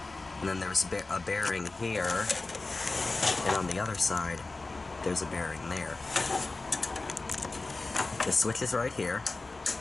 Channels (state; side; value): quieter; right; 3.4 dB